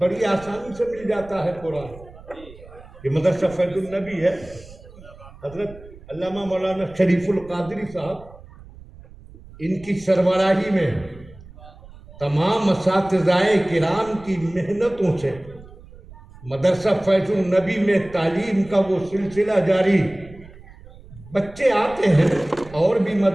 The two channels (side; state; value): right; noise; rumble, 20 dB below the sound